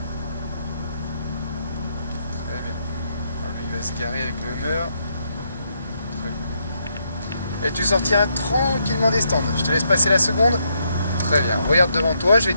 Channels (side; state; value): both; inverted; correlation -0.77